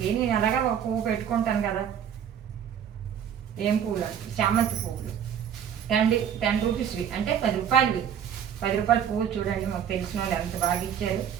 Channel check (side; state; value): left; quieter; 8.8 dB